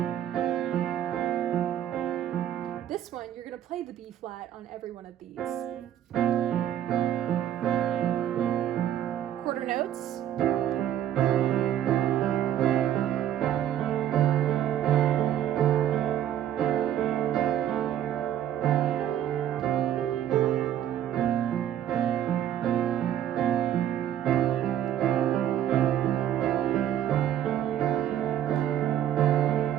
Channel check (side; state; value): left; quieter; 11.0 dB